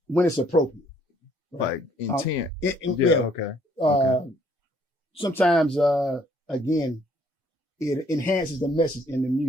When it's appropriate. Like intent. Okay. Sometimes, again, it enhances the message in the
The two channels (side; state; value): both; normal; correlation 0.64